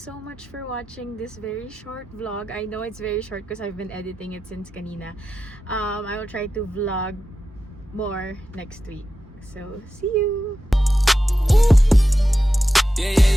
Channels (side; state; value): both; normal; correlation 0.91